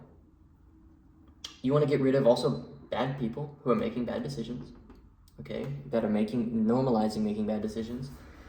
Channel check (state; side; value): identical; both; correlation 1.00